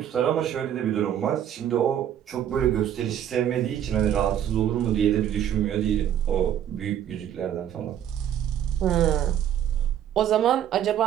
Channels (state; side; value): quieter; left; 10.2 dB